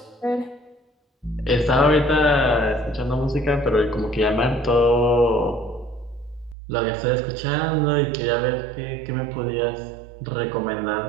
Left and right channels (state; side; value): drops out; left; at 6.6 s